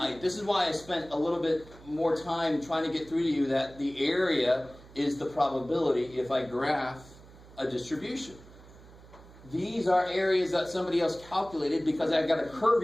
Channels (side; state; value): right; noise; hum, 21 dB below the sound